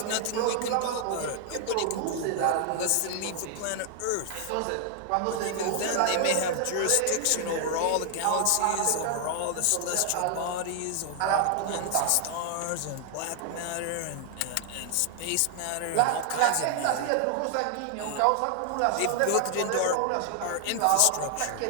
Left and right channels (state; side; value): different; both; correlation 0.00